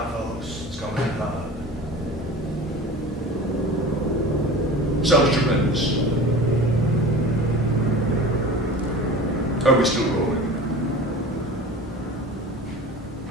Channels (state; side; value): normal; both; correlation 0.36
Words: folks. It's coming in hot. Sounds tremendous. Are we still rolling?